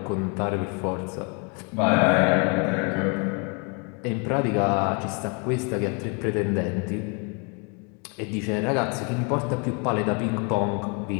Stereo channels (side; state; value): right; quieter; 35.2 dB